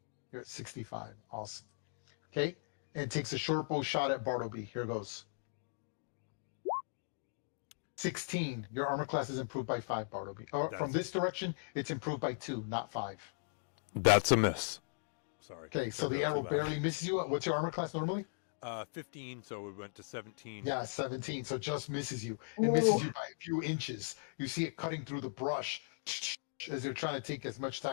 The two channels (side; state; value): right; silent; digital silence